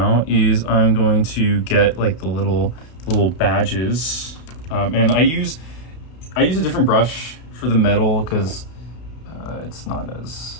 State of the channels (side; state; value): right; late; 32 ms